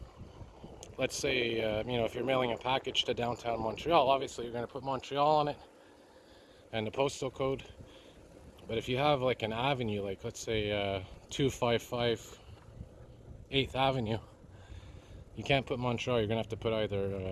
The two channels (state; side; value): identical; both; correlation 1.00